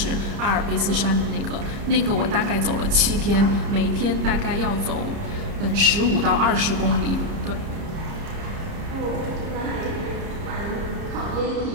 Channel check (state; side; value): late; left; 30 ms